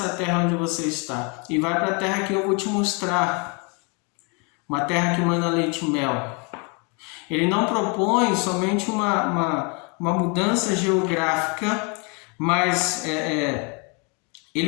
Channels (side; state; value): right; quieter; 33.3 dB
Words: terra onde você está e vai para a terra que eu vou te mostrar, uma terra que manda leite e mel. Ele não propõe somente uma mudança geográfica, mas